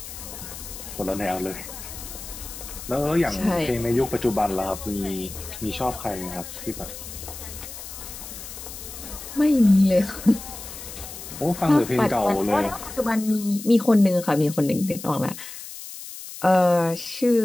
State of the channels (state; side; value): noise; left; hiss, 12 dB below the sound